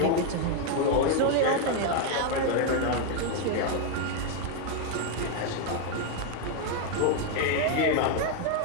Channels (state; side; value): different; both; correlation 0.01